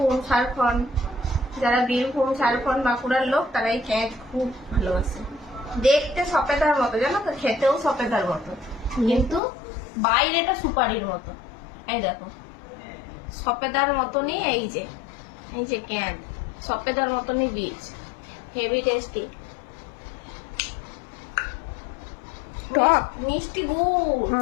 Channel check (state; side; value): drops out; right; at 9.4 s